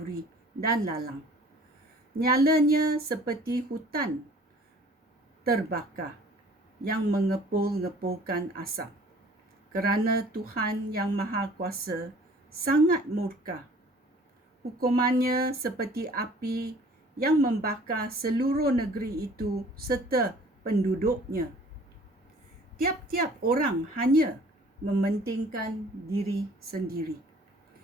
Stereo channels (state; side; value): normal; both; correlation 0.52